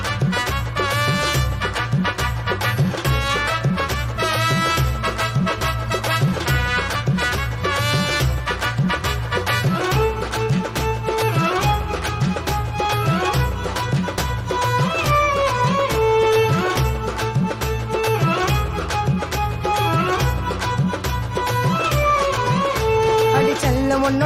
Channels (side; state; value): both; identical; correlation 1.00